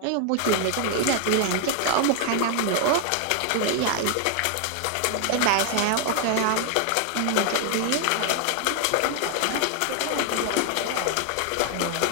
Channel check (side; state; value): both; different; correlation 0.00